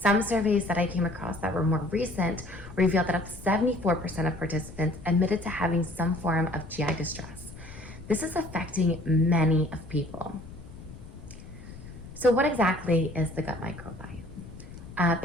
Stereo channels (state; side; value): noise; left; rumble, 15 dB below the sound